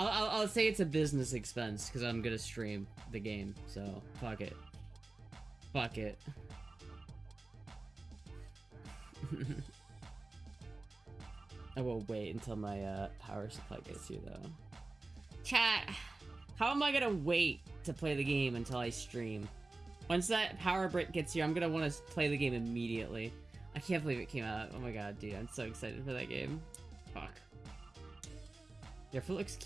say it's a business expense because I'm gonna stream the game. So fuck it. Fuck it. I will wait until my power supply gets here, though. Chat, how am I gonna wait to play the game until I stream? Once that power brick gets here, I'm gonna want to play the game immediately. I can't believe it came out. Oh my god, dude, I'm so excited for that game. Fuck. Your foot looks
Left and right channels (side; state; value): left; quieter; 3.2 dB